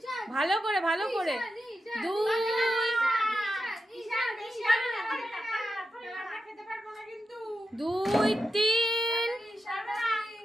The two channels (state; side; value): normal; both; correlation 0.89